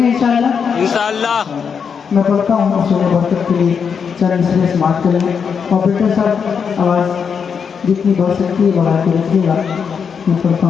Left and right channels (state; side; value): quieter; right; 6.5 dB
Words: इंशाअल्लाह इंशाअल्लाह। मैं पढ़ता हूँ सुबह बरकत के लिए चरण से समाप्त करेंगे। ऑपरेटर साहब आवाज़ जितनी बढ़ सकती है बढ़ा के रखिएगा। मैं पढ़ता